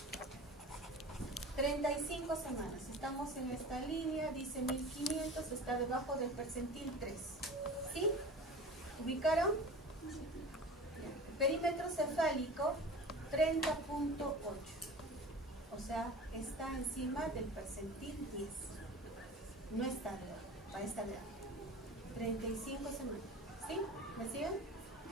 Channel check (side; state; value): both; normal; correlation 0.37